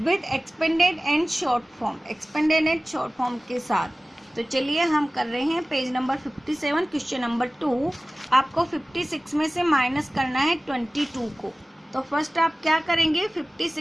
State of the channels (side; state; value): both; normal; correlation 0.97